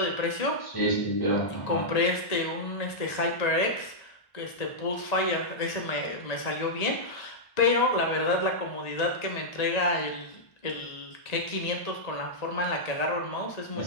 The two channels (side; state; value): right; late; 1.8 ms